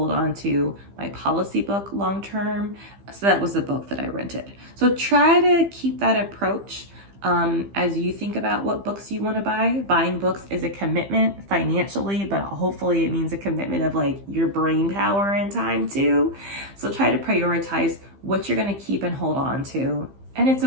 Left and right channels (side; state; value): left; late; 15 ms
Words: on to my policy book long term. So that was the book that I rented. So try to keep that approach as you think about what books you want to buy. Buying books is a commitment financially, but hopefully it means a commitment of like your brain power and time too. So try to prioritize what you're going to keep and hold on to. And it's